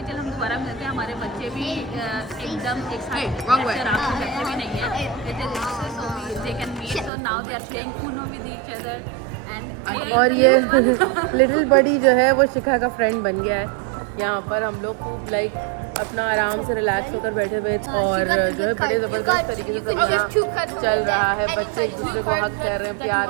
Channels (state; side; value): drops out; left; at 7.1 s